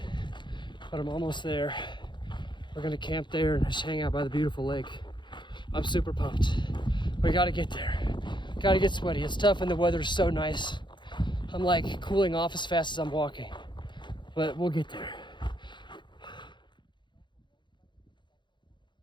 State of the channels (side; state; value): right; late; 0.22 ms